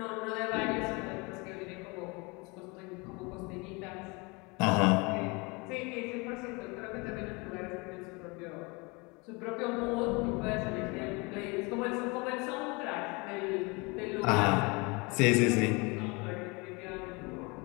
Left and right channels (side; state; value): right; quieter; 27.7 dB